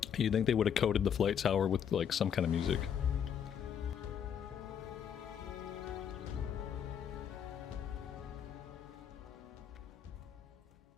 You'd think they would have coded the flight tower with like some kind of music.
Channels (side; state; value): right; quieter; 8.3 dB